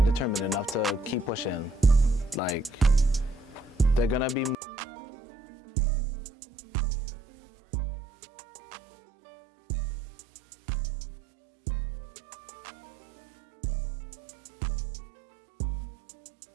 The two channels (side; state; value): left; drops out; at 4.5 s